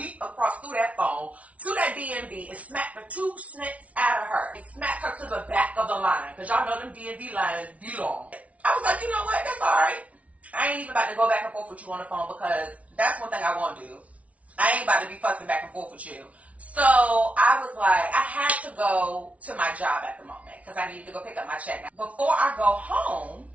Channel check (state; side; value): late; left; 0.066 ms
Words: across through that phone to that DMV and smack the two snits out of her. And smack her to the back of the line. Because y'all know them DMV lines be long. I was like, you know what? That's all right. I ain't even about to go back and forth with you on the phone because that's one thing I won't do. I ain't about to be fussing back and forth with you. So I was like, I had to go to my job at the moment because I needed to go pick up my check. Now, before I go home,